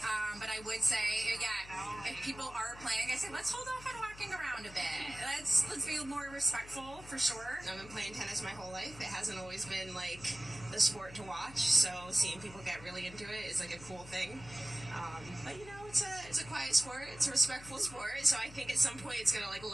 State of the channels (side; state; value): left; noise; hum, 17 dB below the sound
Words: but I would say, yeah, if people are playing, I say let's hold off on walking around a bit. Let's be more respectful for sure. I've been playing tennis my whole life. It hasn't always been like the sport to watch, so seeing people get really into it is like a cool thing. But you know, it's a quiet sport. It's a respectful sport. So I think at some point it's gonna like